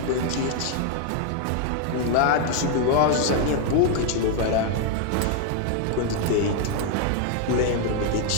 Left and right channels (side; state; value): both; different; correlation 0.00